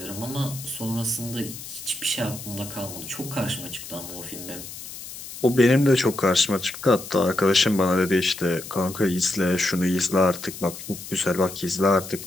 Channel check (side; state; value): left; noise; hiss, 12 dB below the sound